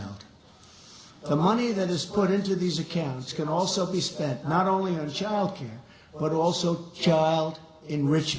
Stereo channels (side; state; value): both; identical; correlation 1.00